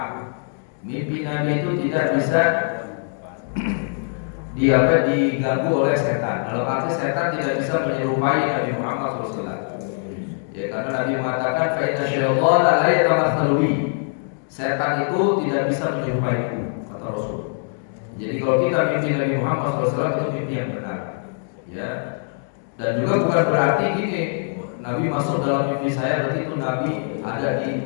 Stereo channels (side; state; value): right; silent; 60 dB below the other